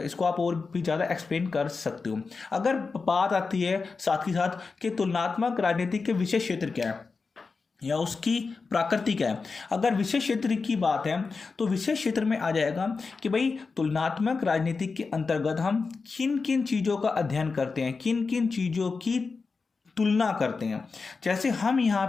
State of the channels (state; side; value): quieter; right; 4.5 dB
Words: आप और भी ज़्यादा एक्सप्लेन कर सकते हो। अगर बात आती है साथ ही साथ कि तुलनात्मक राजनीति के विषय क्षेत्र क्या है या उसकी प्रकृति क्या है। अगर विषय क्षेत्र की बात है तो विषय क्षेत्र में आ जाएगा कि भाई तुलनात्मक राजनीति के अंतर्गत हम किन किन चीज़ों का अध्ययन करते हैं, किन किन चीज़ों की तुलना करते हैं। जैसे हम यहाँ